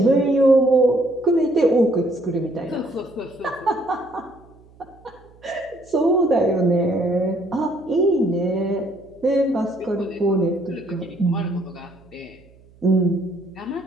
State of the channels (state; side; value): noise; right; hum, 27 dB below the sound